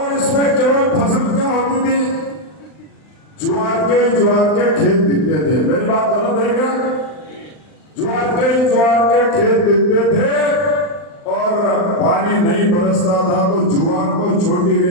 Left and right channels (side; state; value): right; late; 39 ms